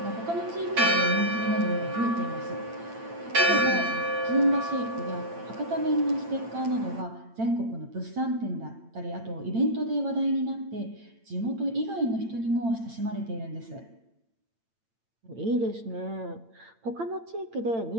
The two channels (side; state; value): left; late; 8.8 ms